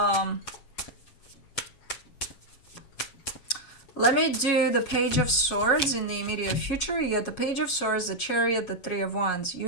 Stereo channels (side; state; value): right; late; 7.2 ms